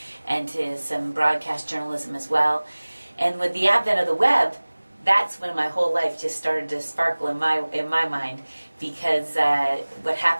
and to some broadcast journalism as well. And with the advent of the web, that's when my whole life just started to sparkle in my mind, because what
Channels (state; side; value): inverted; both; correlation -1.00